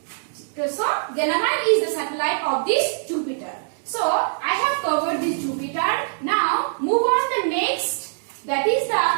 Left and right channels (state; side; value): silent; left; digital silence